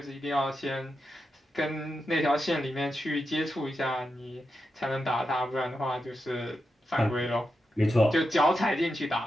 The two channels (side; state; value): both; normal; correlation 0.88